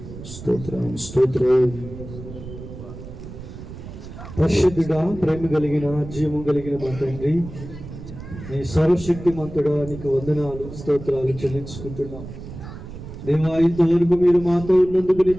స్తోత్రం స్తోత్రం. పరిశుద్ధుడా, ప్రేమ కలిగిన జీవం కలిగిన మా తండ్రి, నీ సర్వశక్తిమంతుడా, నీకు వందనాలు స్తోత్రాలు చెల్లించుకుంటున్నాం. దేవా, ఇంతవరకు మీరు మాతో ఉన్నందుకు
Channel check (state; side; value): noise; right; rumble, 12 dB below the sound